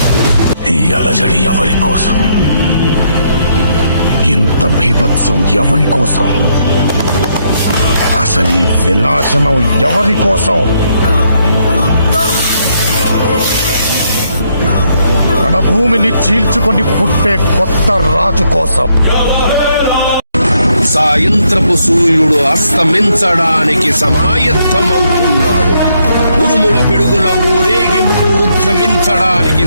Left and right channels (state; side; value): inverted; both; correlation -0.74